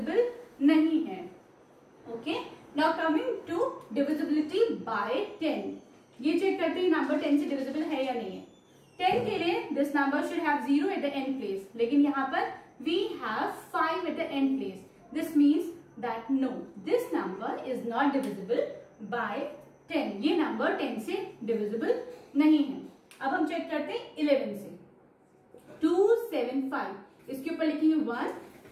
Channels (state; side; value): identical; both; correlation 1.00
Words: नहीं है। Okay, now coming to divisibility by 10। ये चेक करते हैं नंबर 10 से डिविजिबल है या नहीं है। 10 के लिए this number should have 0 at the end place, लेकिन यहाँ पर we have 5 at the end place. This means that no, this number is not divisible by 10। ये नंबर 10 से डिविजिबल नहीं है। अब हम चेक करते हैं 11 से। 2, 7, 5, इसके ऊपर लिखेंगे 1,